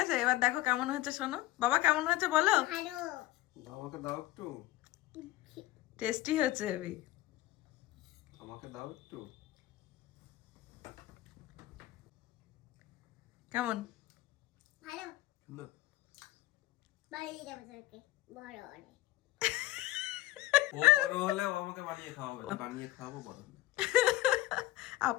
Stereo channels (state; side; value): quieter; right; 16.3 dB